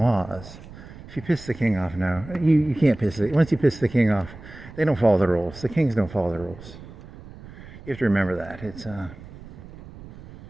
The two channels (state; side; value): noise; right; rumble, 17 dB below the sound